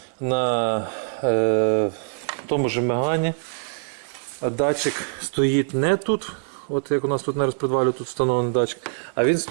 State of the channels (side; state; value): left; silent; 63 dB below the other